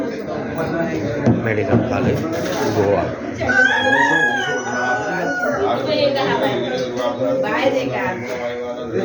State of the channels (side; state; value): both; identical; correlation 1.00